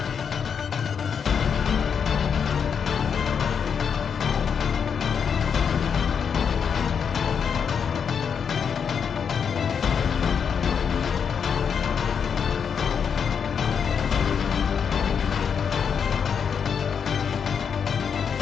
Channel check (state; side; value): quieter; right; 6.9 dB